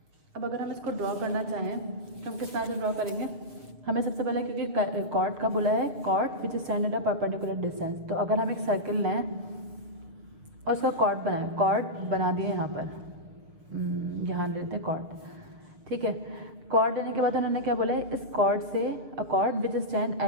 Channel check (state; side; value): late; left; 7.1 ms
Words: अब अगर हम इसको ड्रॉ करना चाहें तो हम किस तरह से ड्रॉ करेंगे. हमें सबसे पहले, क्योंकि कॉर्ड का बोला है, chord which stand at a perpendicular distance, तो अगर हम एक सर्किल लें और उसका कॉर्ड बनाएं, कॉर्ड बना दिए यहाँ पर, यहाँ लेते हैं कॉर्ड, ठीक है. कॉर्ड लेने के बाद उन्होंने क्या बोला है, इस कॉर्ड से अ cord which stand